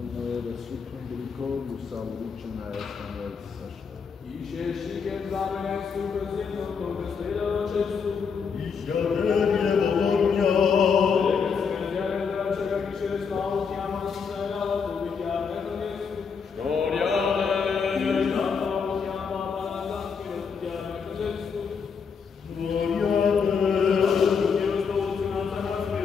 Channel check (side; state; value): right; quieter; 5.9 dB